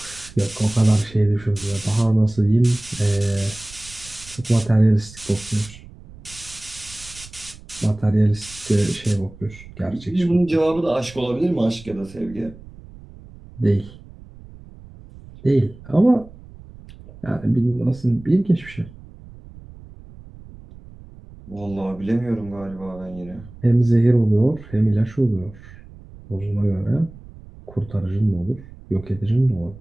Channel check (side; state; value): right; noise; rumble, 19 dB below the sound